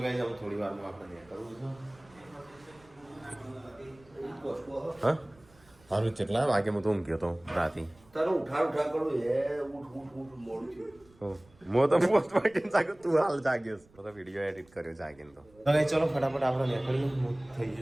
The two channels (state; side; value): noise; right; rumble, 29 dB below the sound